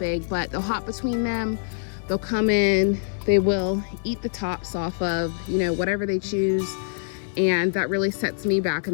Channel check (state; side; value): silent; right; digital silence